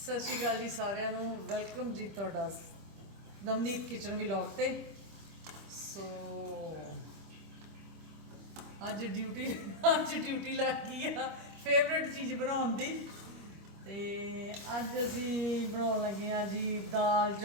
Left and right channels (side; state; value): left; late; 25 ms